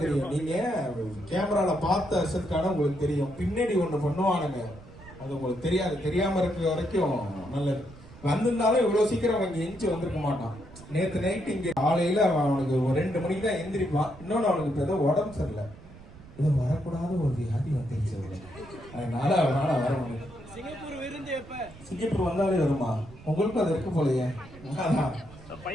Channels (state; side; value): noise; right; rumble, 19 dB below the sound